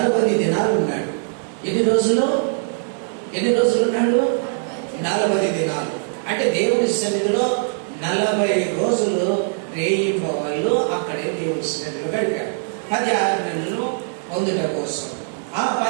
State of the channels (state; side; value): silent; left; digital silence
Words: దినాలు ఉన్నాడు. ఎన్ని రోజులు ఉన్నాడు? 40 దినాలు. అంటే దేవుని సన్నిధిలో 40 రోజులు రేయింబవళ్ళు అక్కడే దేవుని సన్నిధిలో గడిపాడు. 10 ఆజ్ఞలను పొందుట కోసం. ఆ